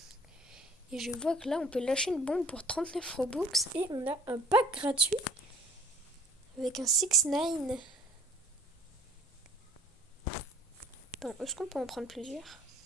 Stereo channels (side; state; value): both; normal; correlation 0.54